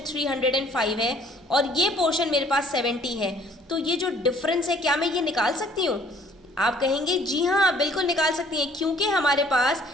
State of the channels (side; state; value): both; normal; correlation 0.58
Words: 305 है और ये पोर्शन मेरे पास 70 है, तो ये जो डिफरेंस है क्या मैं ये निकाल सकती हूँ? आप कहेंगे जी हाँ आप बिल्कुल निकाल सकती हैं, क्योंकि हमारे पास